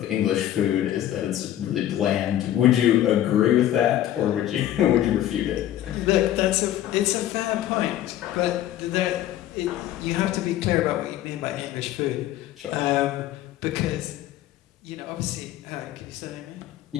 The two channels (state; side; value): quieter; right; 12.6 dB